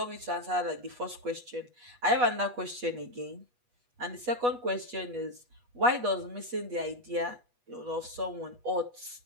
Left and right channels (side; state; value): left; late; 8.2 ms